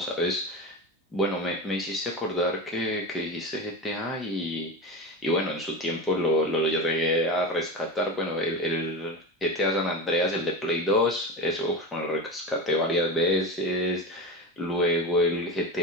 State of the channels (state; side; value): normal; both; correlation 0.23